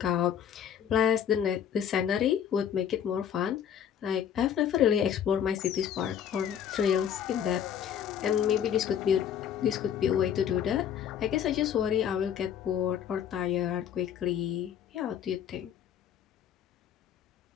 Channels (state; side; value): quieter; right; 9.1 dB